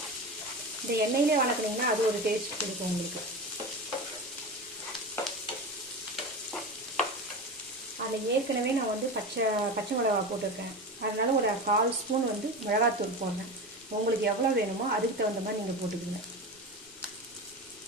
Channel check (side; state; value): both; normal; correlation 0.26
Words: இந்த எண்ணெயிலே வதக்குனீங்கன்னா அது ஒரு டேஸ்ட் கொடுக்கும் உங்களுக்கு. அதில் ஏற்கனவே நான் வந்து பச்சை மிளகா போட்டிருக்கேன், அதனால ஒரு 1/4 ஸ்பூன் வந்து மிளகாத்தூள் போடுறேன். உங்களுக்கு எவ்வளோ வேணுமோ அதுக்கு தகுந்த மாதிரி நீங்கள் போட்டுக்கோங்க.